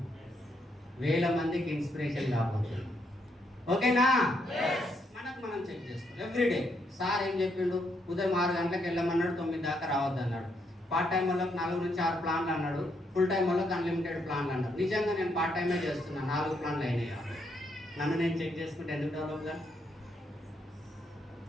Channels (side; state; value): both; normal; correlation 0.76